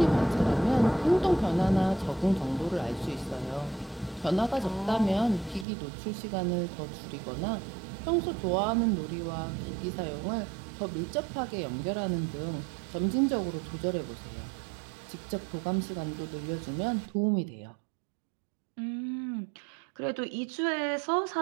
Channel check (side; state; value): left; drops out; at 5.7 s